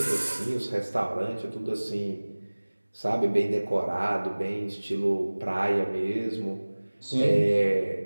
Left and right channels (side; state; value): both; inverted; correlation -1.00